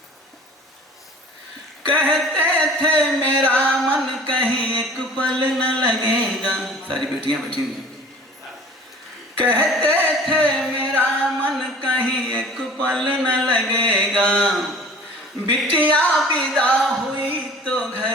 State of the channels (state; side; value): normal; both; correlation 0.46